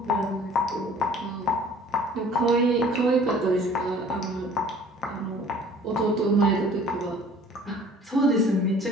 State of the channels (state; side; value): normal; both; correlation 0.51